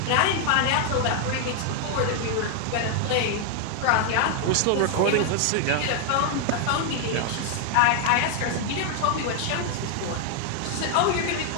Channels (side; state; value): both; different; correlation 0.00